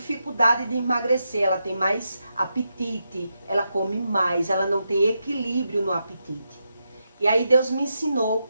de emagrecer, ela tem mais apetite, ela come mais, ela não tem equilíbrio no apetite. E aí Deus me ensinou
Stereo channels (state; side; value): inverted; both; correlation -0.85